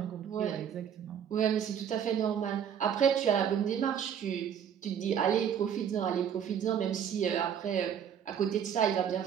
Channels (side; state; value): left; quieter; 8.5 dB